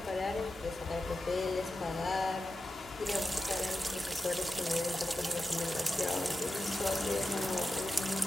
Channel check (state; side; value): normal; both; correlation 0.92